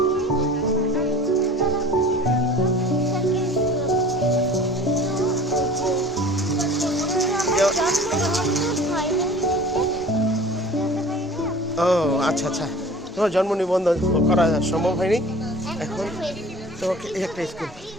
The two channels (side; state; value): both; normal; correlation 0.43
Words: ও আচ্ছা আচ্ছা, তোমার জন্ম নিবন্ধন করা সম্ভব হয়নি। এখন তোমাকে এই একটা স্কুল,